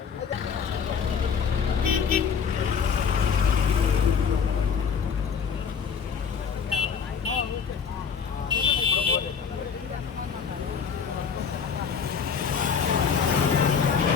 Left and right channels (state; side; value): quieter; right; 6.6 dB